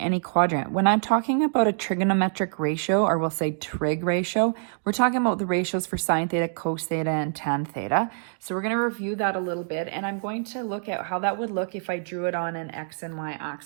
quadrant. When I'm talking about a trigonometric ratio, or we'll say trig ratio, we're talking about the ratios for sine theta, cos theta, and tan theta. So we're going to review that a little bit, and I'm going to look at how that would look if I drew it on an x and y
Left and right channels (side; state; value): left; silent; digital silence